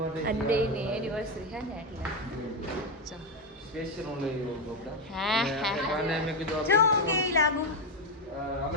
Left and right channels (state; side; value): normal; both; correlation 0.08